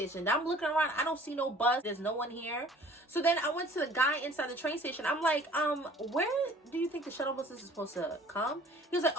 Now I'm looking around, I don't see no bus, there's no one here. So then I went to the guy inside the train station. I'm like, where do you think the shuttle bus is supposed to come? He was like,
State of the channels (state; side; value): normal; both; correlation 0.51